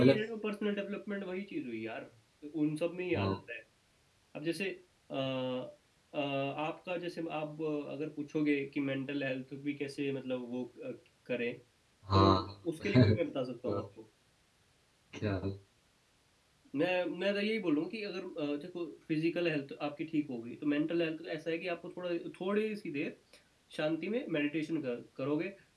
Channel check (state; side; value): identical; both; correlation 1.00